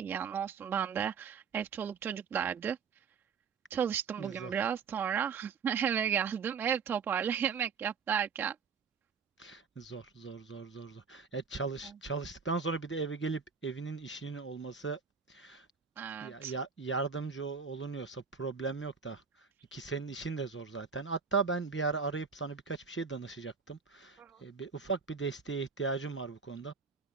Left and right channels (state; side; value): quieter; left; 5.9 dB